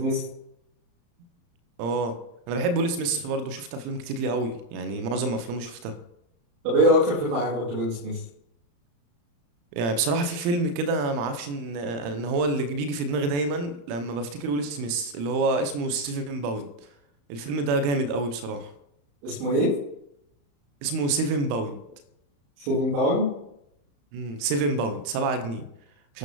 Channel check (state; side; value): late; left; 35 ms